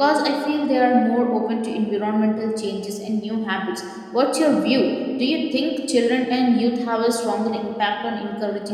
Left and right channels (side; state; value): both; identical; correlation 1.00